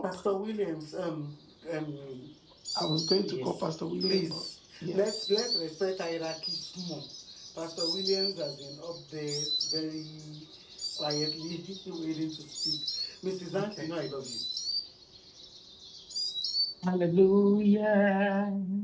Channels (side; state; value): both; identical; correlation 1.00